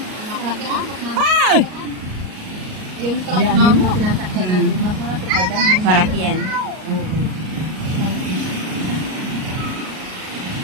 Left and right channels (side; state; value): left; late; 38 ms